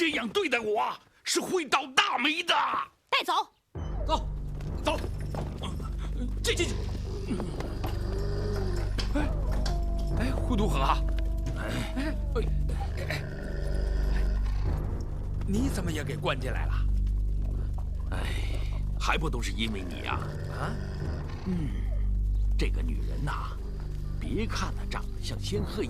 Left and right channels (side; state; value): both; identical; correlation 1.00